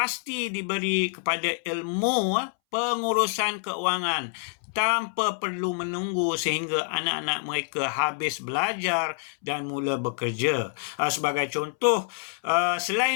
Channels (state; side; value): silent; right; 60 dB below the other